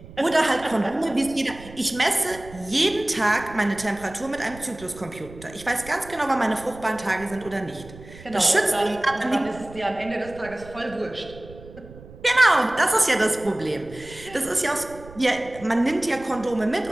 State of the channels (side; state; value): right; noise; rumble, 18 dB below the sound